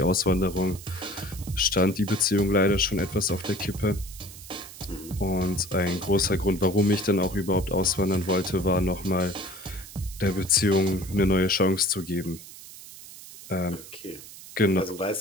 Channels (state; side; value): noise; right; hiss, 16 dB below the sound